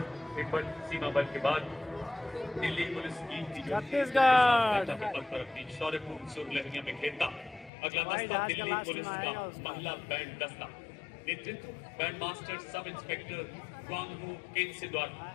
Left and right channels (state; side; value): drops out; right; at 7.7 s